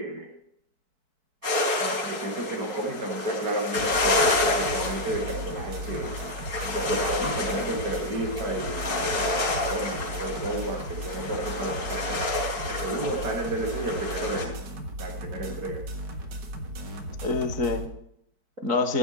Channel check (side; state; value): left; late; 4.6 ms